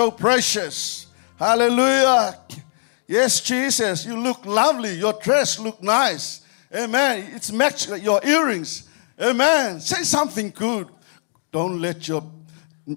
precious. Hallelujah. Yes, Jesus, you look lovely. Your dress look nice. Amen. It's matched your earrings. Amen. Say something good. Don't let your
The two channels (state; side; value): silent; right; 65 dB below the other